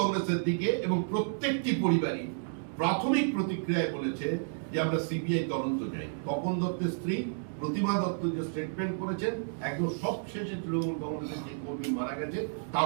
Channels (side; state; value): left; silent; digital silence